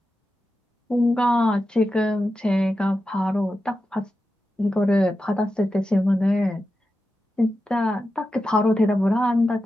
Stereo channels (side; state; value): both; normal; correlation 0.91